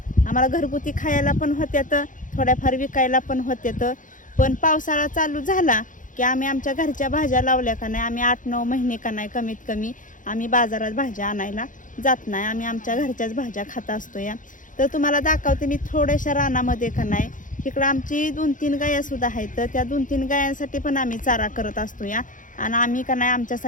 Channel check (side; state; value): right; late; 0.38 ms